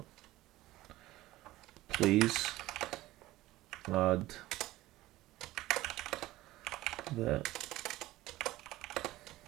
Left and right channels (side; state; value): left; quieter; 17.1 dB